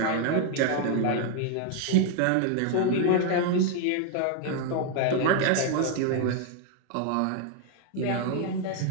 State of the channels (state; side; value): different; both; correlation 0.00